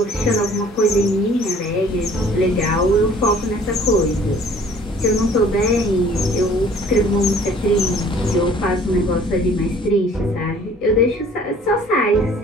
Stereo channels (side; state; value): both; normal; correlation 0.53